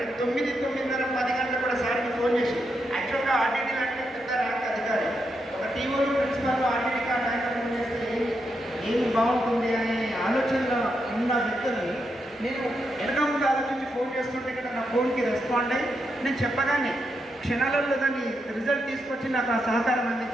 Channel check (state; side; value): normal; both; correlation 0.83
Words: 9, 9:30, 10 గంటలకు కూడా సార్కి ఫోన్ చేసి, యాక్చువల్గా ఆర్టీడీ లాంటి పెద్ద ర్యాంక్ అధికారి ఒక టీఓలు ప్రిన్సిపల్ ఆర్టీడీ నాయకత్వం చేస్తే ఏమి బాగుంటుంది అనే ఆలోచనలో ఉన్న వ్యక్తుల్ని నేను వెనక ముందు ఆలోచించి ఫోన్ చేస్తుంటే కదా నా ఫోన్కి రెస్పాండ్ అయ్యి నేను చెప్పగానే క్షణాలలో దాన్ని రిజల్ట్ తీసుకొచ్చి నాకు ఆ సహకారం